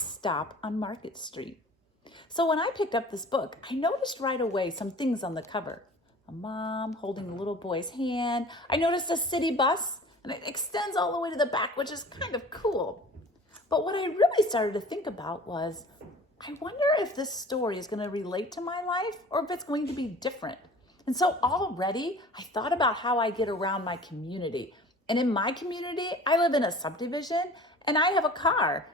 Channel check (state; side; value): normal; both; correlation 0.44